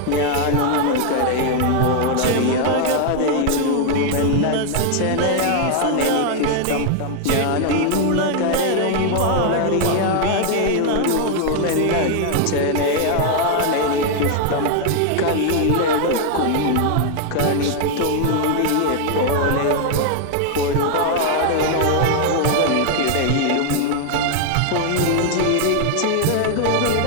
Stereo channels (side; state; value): both; different; correlation 0.00